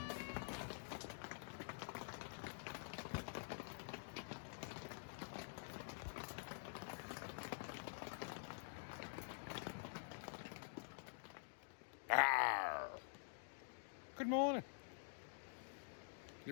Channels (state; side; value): silent; right; digital silence